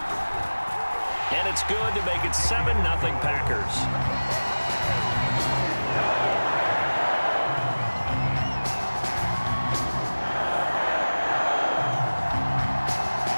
And it's good to make it 7-0 Packers.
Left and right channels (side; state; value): both; inverted; correlation -1.00